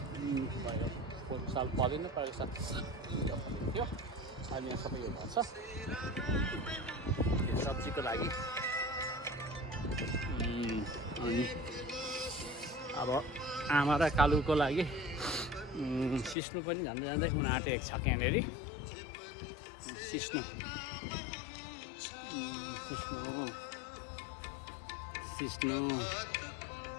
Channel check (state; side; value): drops out; right; at 16.4 s